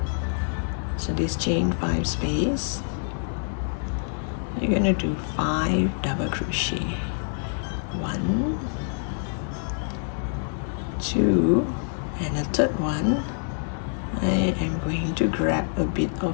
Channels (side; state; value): right; silent; digital silence